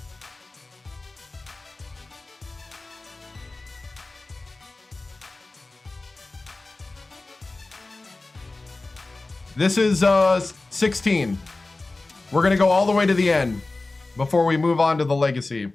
This is 16. We're gonna go all the way to the end before we move on to the legacy.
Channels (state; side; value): quieter; right; 3.2 dB